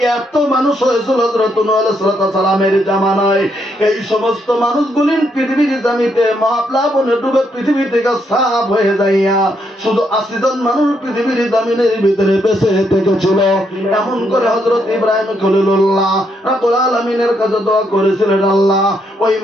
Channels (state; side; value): normal; both; correlation 0.76